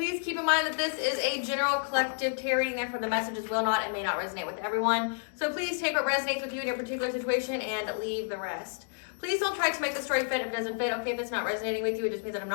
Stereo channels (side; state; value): right; silent; 58 dB below the other